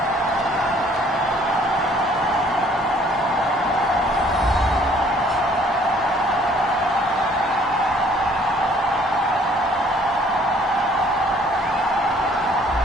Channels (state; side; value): normal; both; correlation 0.59